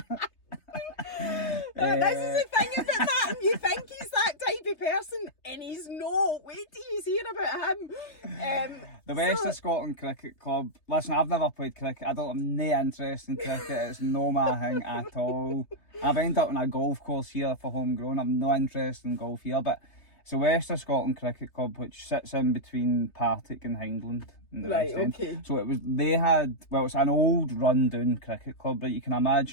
This is the thing about that. You think he's that type of person, and he's not. Wait till you hear about him. The West of Scotland Cricket Club. Listen, I've never played cricket. I don't have no interest in cricket. It's no my thing at all. I've ended up in a golf course here for Homegrown. I've no interest in golf here, but it's the West of Scotland Cricket Club, which sits in between Partick and Hindland. Right, okay. So it's an old run-down cricket club, right? You can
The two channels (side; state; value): right; late; 3.3 ms